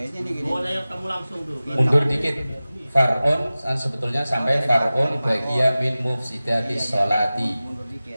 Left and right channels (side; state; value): both; inverted; correlation -0.97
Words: nih gini. Kamu langsung tuh. Mundur dikit. Far'un sebetulnya sampai far'un bagiya min mufsidati sholati. Mundur dikit.